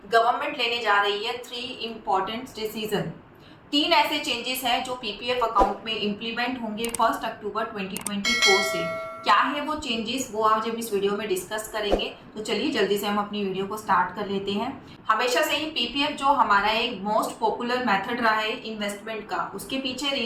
गवर्नमेंट लेने जा रही है 3 इम्पॉर्टेंट डिसीजन। 3 ऐसे चेंजेस हैं जो पीपीएफ अकाउंट में इम्प्लीमेंट होंगे 1 अक्टूबर 2024 से। क्या है वो चेंजेस, वो आज हम इस वीडियो में डिस्कस करेंगे। तो चलिए जल्दी से हम अपनी वीडियो को स्टार्ट कर लेते हैं। हमेशा से ही पीपीएफ जो हमारा एक मोस्ट पॉपुलर मेथड रहा है इन्वेस्टमेंट का, उसके पीछे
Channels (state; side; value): identical; both; correlation 1.00